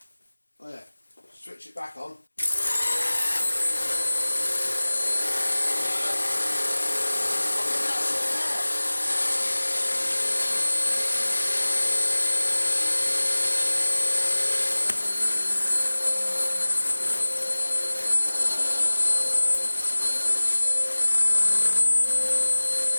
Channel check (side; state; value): both; inverted; correlation -1.00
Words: Oh yeah, switch it back on.